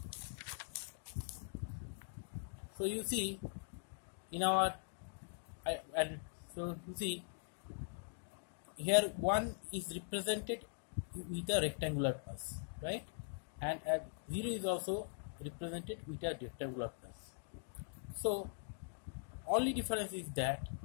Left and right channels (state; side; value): silent; right; digital silence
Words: So you see in our here 1 is represented with a rectangular pulse, right? And 0 is also represented with a rectangular pulse. So only difference is that